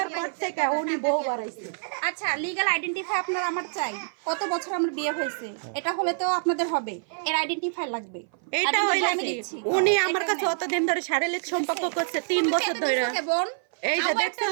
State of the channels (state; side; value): silent; left; 57 dB below the other